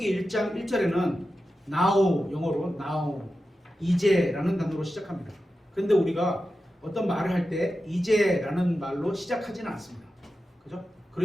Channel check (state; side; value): normal; both; correlation 0.92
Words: 1장 1절에는 now, 영어로 now, 이제라는 단어로 시작합니다. 그런데 우리가 어떤 말을 할 때 이제라는 말로 시작하지는 않습니다. 그죠?